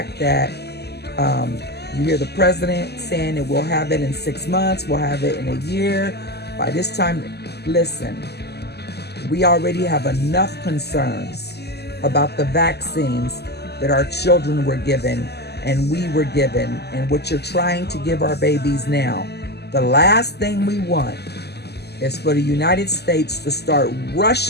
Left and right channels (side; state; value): right; late; 0.48 ms